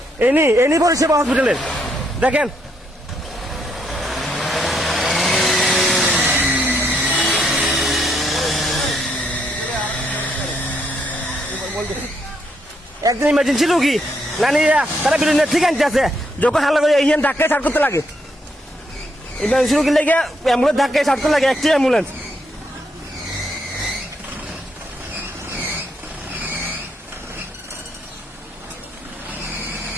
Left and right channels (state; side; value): normal; both; correlation 0.75